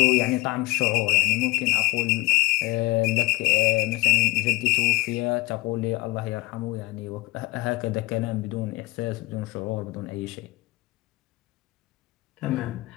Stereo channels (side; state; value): right; quieter; 20.5 dB